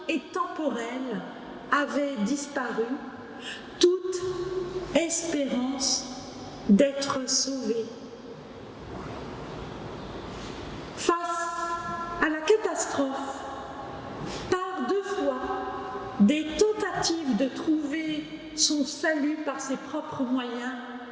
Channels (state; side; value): identical; both; correlation 1.00